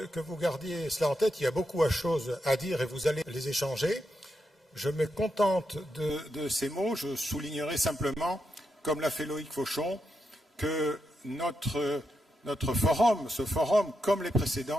vous gardiez cela en tête. Il y a beaucoup de choses à dire et vous allez les échanger. Je me contente de ces mots. Je soulignerai simplement, comme l'a fait Loïc Fauchon, que notre forum, ce forum, comme les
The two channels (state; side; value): normal; both; correlation 0.84